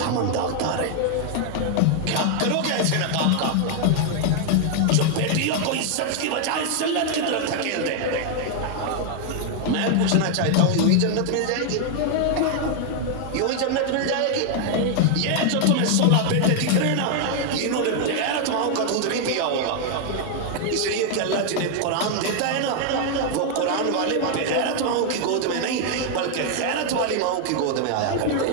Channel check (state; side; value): different; both; correlation 0.00